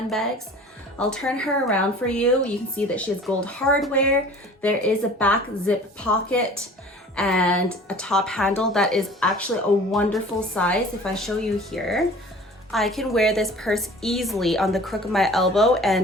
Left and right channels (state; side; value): normal; both; correlation 0.45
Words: I'll turn her around for you. You can see that she has gold hardware. There is a back zip pocket and a top handle that is actually a wonderful size. If I show you here, I can wear this purse easily on the crook of my elbow,